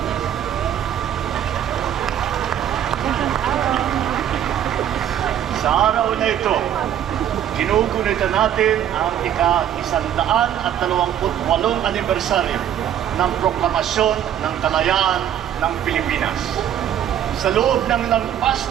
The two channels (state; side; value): quieter; left; 10.3 dB